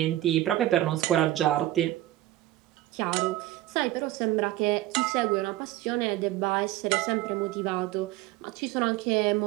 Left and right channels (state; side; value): quieter; left; 15.4 dB